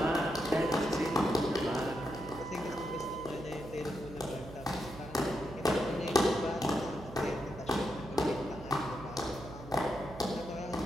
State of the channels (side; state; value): right; noise; hum, 14 dB below the sound